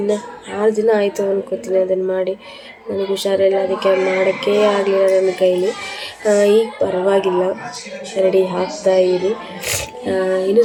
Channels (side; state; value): both; identical; correlation 1.00